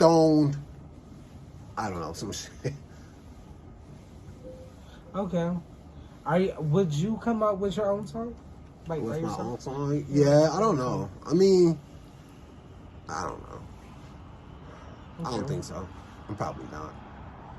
I don't know, some shit. Okay. Would you come out with your own song? Like With by my yourself? own song? Yeah, I don't know. I mean, I don't know. I don't Okay. think so. I'm probably not.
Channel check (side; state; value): both; identical; correlation 1.00